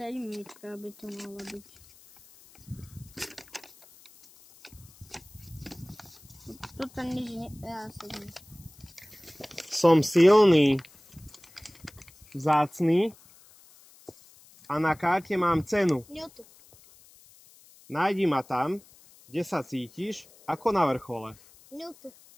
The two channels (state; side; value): noise; left; hiss, 25 dB below the sound